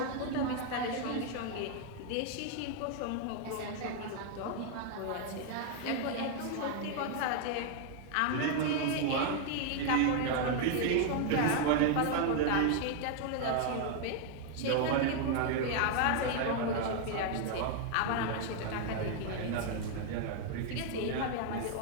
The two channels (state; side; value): different; both; correlation 0.00